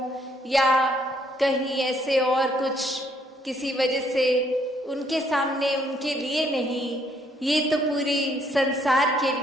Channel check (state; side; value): normal; both; correlation 0.69